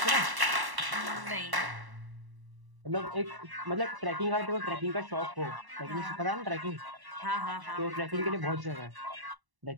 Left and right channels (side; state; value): left; late; 1.1 ms